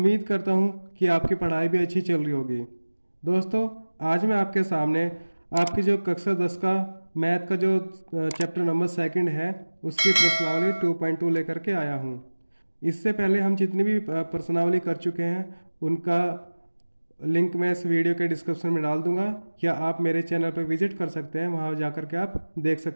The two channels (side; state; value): both; inverted; correlation -1.00